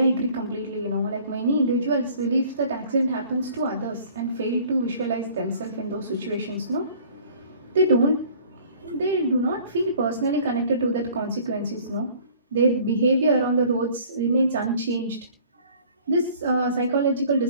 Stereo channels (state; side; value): inverted; both; correlation -0.52